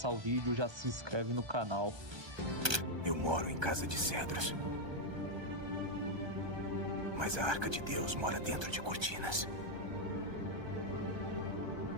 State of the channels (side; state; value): left; late; 1.3 ms